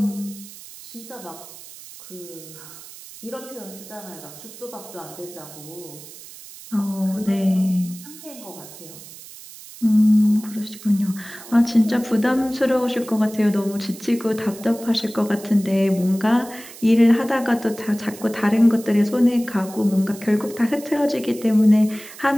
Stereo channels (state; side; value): noise; right; hiss, 17 dB below the sound